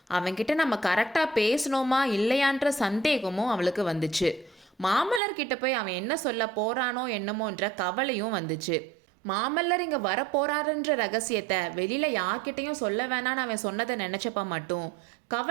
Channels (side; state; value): left; drops out; at 5.2 s